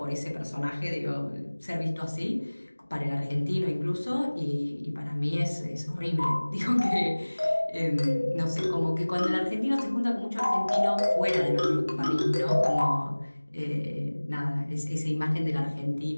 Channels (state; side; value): inverted; both; correlation -1.00